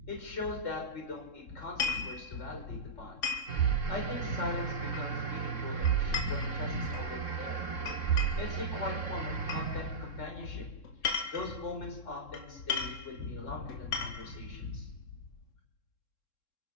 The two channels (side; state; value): right; late; 3.7 ms